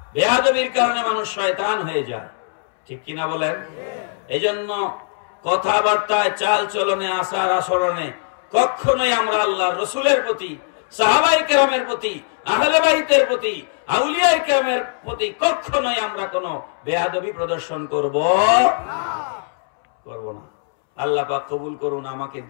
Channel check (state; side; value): silent; right; 65 dB below the other